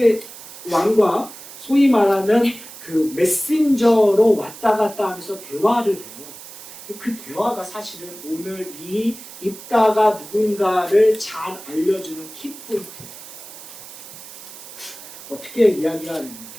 왕과 소위 말하는 그 메신저로 왔다 갔다 하면서 대화를 해요. 그 대화가 사실은 오늘 이 입다가 누군가를 잘 알려주는 키포인트예요. 어떻게 이야기가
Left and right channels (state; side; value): noise; right; hiss, 15 dB below the sound